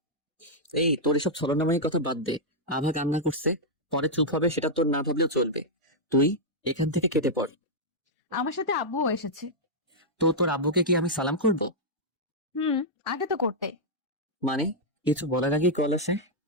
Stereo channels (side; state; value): both; normal; correlation -0.06